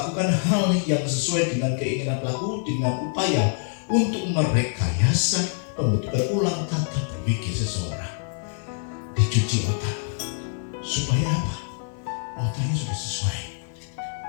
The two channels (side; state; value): right; silent; 62 dB below the other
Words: hal yang sesuai dengan keinginan pelaku dengan upaya untuk merekayasa pembentukan ulang tata berpikir seseorang. Dicuci otak supaya apa? Otaknya sudah sesuai,